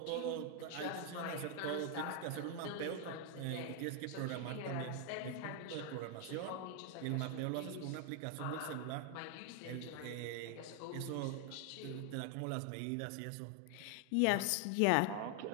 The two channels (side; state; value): both; different; correlation 0.00